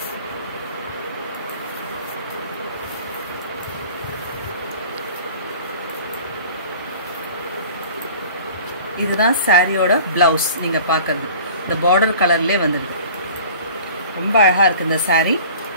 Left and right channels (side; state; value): both; inverted; correlation -0.45